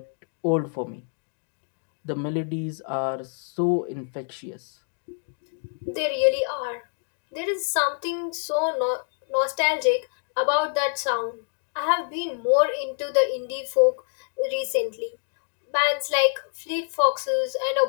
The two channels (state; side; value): silent; right; 58 dB below the other